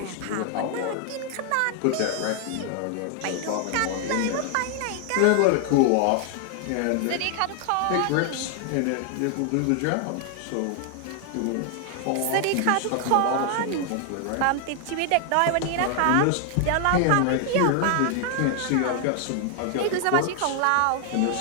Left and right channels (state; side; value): different; both; correlation 0.00